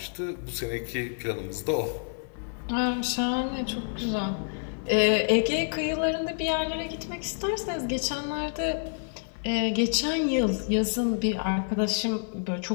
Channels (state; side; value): silent; right; 59 dB below the other